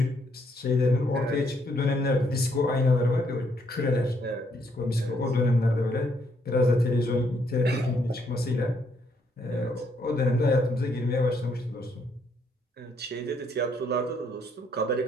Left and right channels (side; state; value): both; normal; correlation 0.71